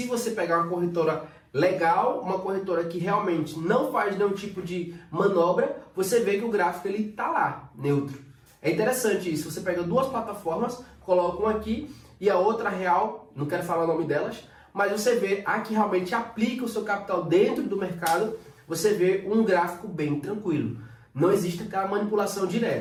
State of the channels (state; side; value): identical; both; correlation 1.00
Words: você pegar uma corretora legal, uma corretora que realmente não faz nenhum tipo de manobra, você vê que o gráfico ele tá lá, neutro. É interessante isso. Você pega duas plataformas, coloca uma aqui e a outra real, não quero falar o nome delas, mas você vê a que realmente aplica o seu capital dentro do mercado, você vê um gráfico bem tranquilo. Não existe aquela manipulação